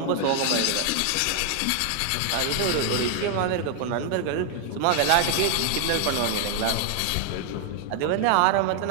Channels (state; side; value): different; both; correlation 0.00